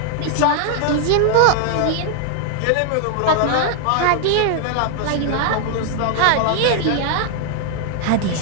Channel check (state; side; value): different; both; correlation 0.00